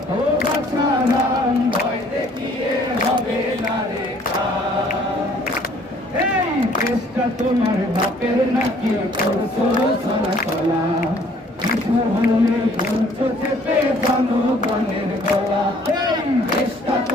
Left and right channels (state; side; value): normal; both; correlation 0.58